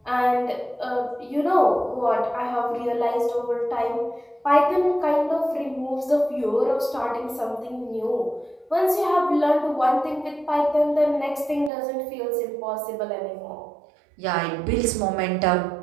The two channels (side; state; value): left; drops out; at 11.7 s